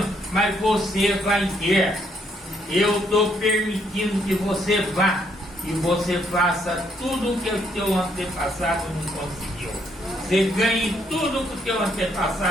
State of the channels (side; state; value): both; normal; correlation 0.71